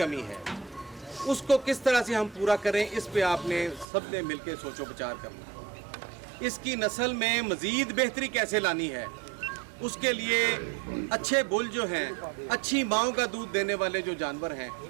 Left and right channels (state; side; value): drops out; left; at 3.9 s